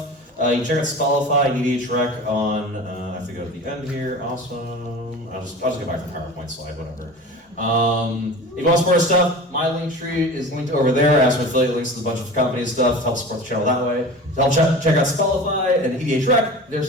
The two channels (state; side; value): normal; both; correlation 0.35